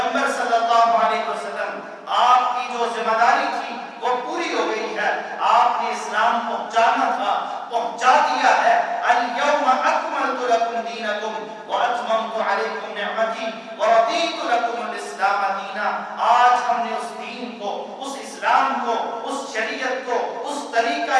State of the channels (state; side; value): identical; both; correlation 1.00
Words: پہنچانا تھا پہنچا دیا ہے۔ الیوم اکملت لکم دینکم واتممت علیکم نعمتی ورضیت لکم الاسلام دینا۔ آج ہم نے اس دین کو، اس اسلام کو، اس شریعت کو، اس